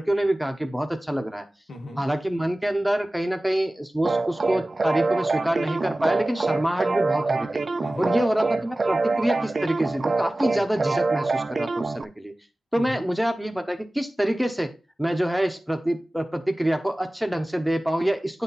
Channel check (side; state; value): both; normal; correlation 0.97